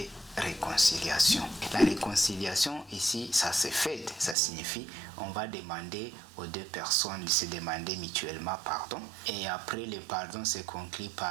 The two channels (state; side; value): drops out; left; at 4.4 s